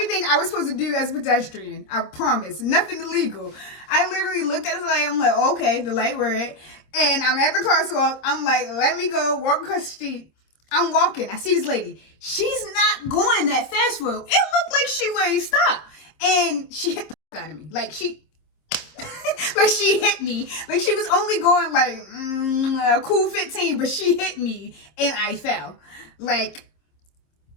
I was supposed to do as a pedestrian. I promise. Nothing illegal. I literally looked at the light. I'm like, okay, the light red. And I'm at the crosswalk. I'm like, let me go walk across the street. I'm walking. I see this lady. She's not going that fast road. It looked like she ready to stop. And she hit the out of me. Like she hit me. Like she was only going like a cool 15, but she hit me and I fell. Like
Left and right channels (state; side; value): late; right; 26 ms